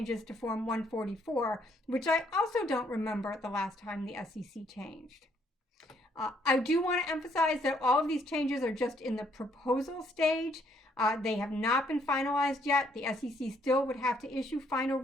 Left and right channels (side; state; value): both; normal; correlation 0.68